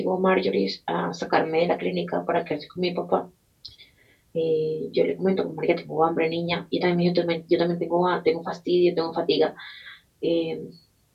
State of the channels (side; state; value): both; identical; correlation 1.00